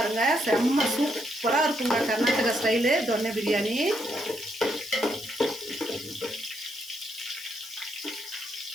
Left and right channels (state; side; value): noise; left; hiss, 17 dB below the sound